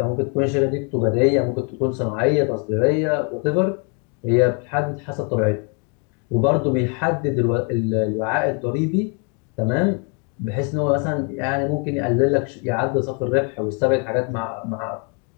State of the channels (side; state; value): right; quieter; 37.5 dB